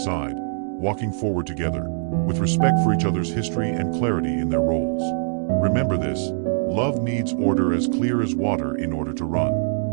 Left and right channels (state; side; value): silent; left; digital silence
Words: walking forward together, with respect for each other's history and clarity in their roles. Remember this: love needs order as clear as water in order to run.